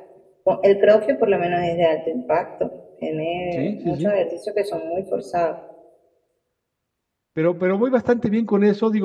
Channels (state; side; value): identical; both; correlation 1.00